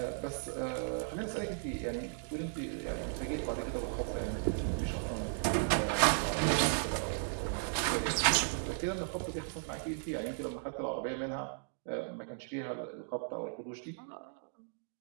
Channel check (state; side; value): silent; left; digital silence